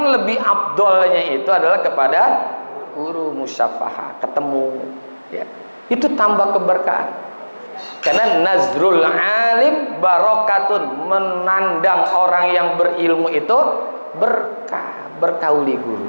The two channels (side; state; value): both; inverted; correlation -1.00